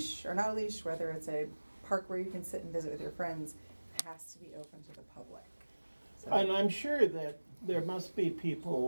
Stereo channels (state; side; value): inverted; both; correlation -1.00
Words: or not a leash, whether it's a park where you can sit and visit with your friends, has to be open to the public. So- and I'm sure that there must be